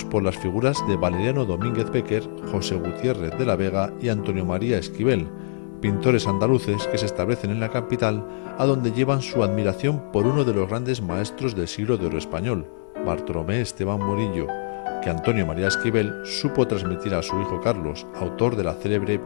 por las figuras de Valeriano Domínguez Becker, José Gutiérrez de la Vega y Antonio María Esquivel, pintores andaluces que se establecen en la capital, a donde llevan su admiración por uno de los grandes maestros del siglo de oro español, Bartolomé Esteban Murillo, que Antonio María Esquivel supo transmitir a su hijo Carlos, autor de la célebre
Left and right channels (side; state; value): right; silent; digital silence